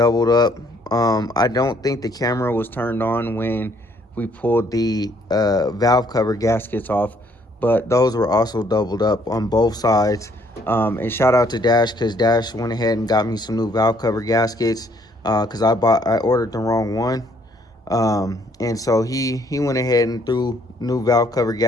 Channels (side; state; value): both; normal; correlation 0.65